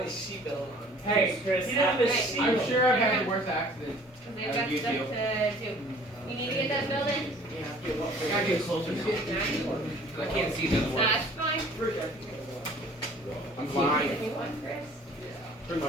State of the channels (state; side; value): normal; both; correlation 0.51